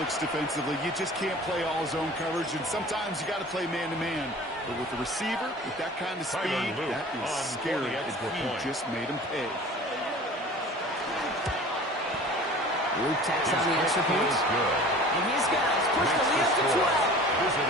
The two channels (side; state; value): both; normal; correlation 0.43